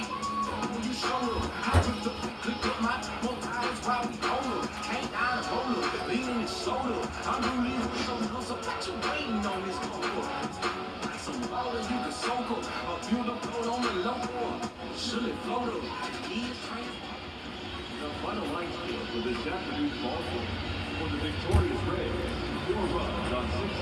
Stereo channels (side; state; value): both; identical; correlation 1.00